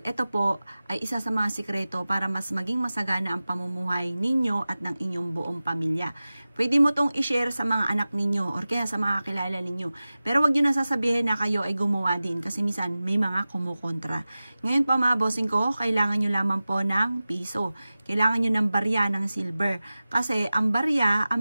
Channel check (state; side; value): inverted; both; correlation -0.96